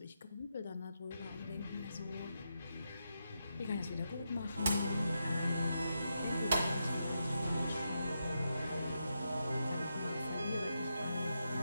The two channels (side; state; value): both; inverted; correlation -0.85